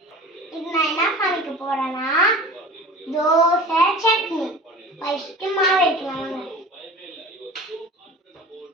இது நான் என்ன சமைக்க போகிறேன்னா தோசை சட்னி. ஃபஸ்ட்டு மாவு வைக்கலாம்.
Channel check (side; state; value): both; normal; correlation 0.38